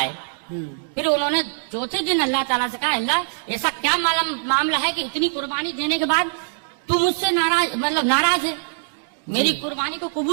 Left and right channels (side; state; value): left; silent; digital silence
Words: हम्म, फिर उन्होंने चौथे दिन अल्लाह ताला से कहा, अल्लाह ऐसा क्या मामला है कि इतनी कुर्बानी देने के बाद तू मुझसे नाराज है, मेरी कुर्बानी को